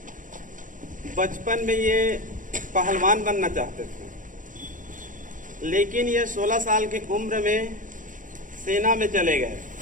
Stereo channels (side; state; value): left; late; 0.38 ms